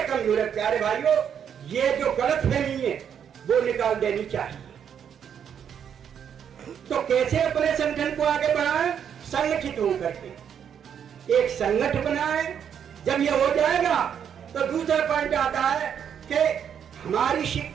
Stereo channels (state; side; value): quieter; left; 8.3 dB